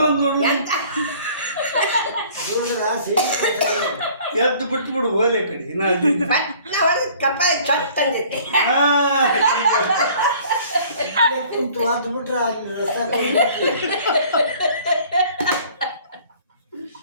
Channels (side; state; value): both; inverted; correlation -0.52